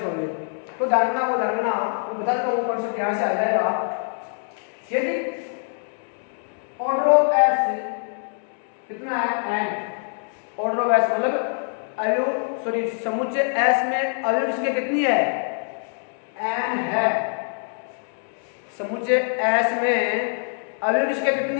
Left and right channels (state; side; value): silent; right; 62 dB below the other